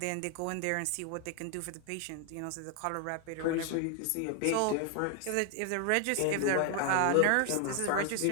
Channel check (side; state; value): both; different; correlation 0.00